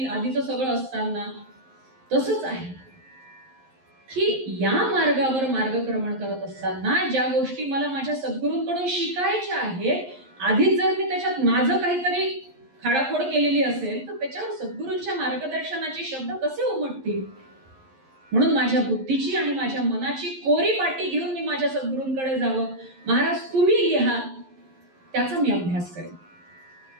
आधीचं सगळं असताना? तसंच आहे की या मार्गावर मार्गक्रमण करत असताना ज्या गोष्टी मला माझ्या सद्गुरूंकडून शिकायच्या आहेत, आधीच जर मी त्याच्यात माझं काहीतरी खाडाखोड केलेली असेल तर त्याच्यावर सद्गुरूंच्या मार्गदर्शनाचे शब्द कसे उमटतील? म्हणून माझ्या बुद्धीची आणि माझ्या मनाची कोरी पाटी घेऊन मी माझ्या सद्गुरूंकडे जावं. महाराज तुम्ही लिहा, त्याचा मी अभ्यास करेन.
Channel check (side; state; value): left; late; 11 ms